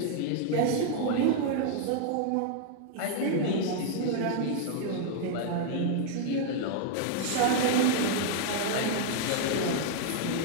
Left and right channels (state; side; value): different; both; correlation 0.00